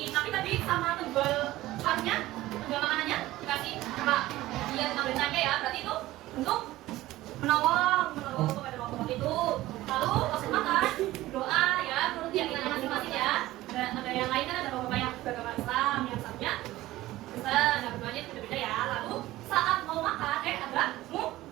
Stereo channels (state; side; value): quieter; left; 16.6 dB